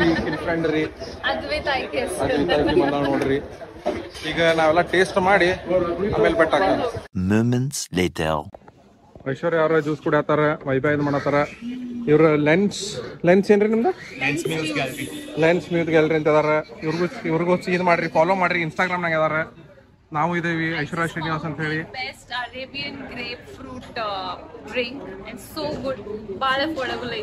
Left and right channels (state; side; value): identical; both; correlation 1.00